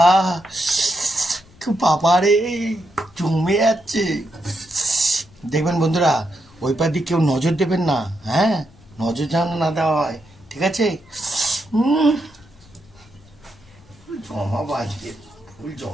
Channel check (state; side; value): noise; left; rumble, 27 dB below the sound